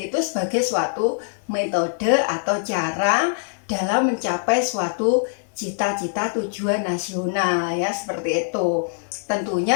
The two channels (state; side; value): silent; right; 64 dB below the other